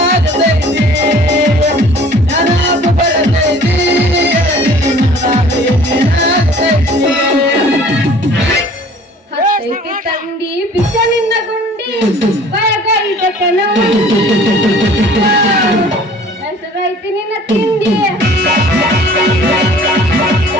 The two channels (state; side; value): normal; both; correlation 0.50